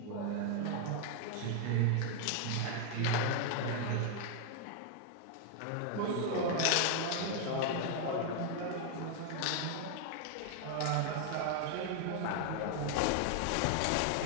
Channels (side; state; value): both; different; correlation 0.00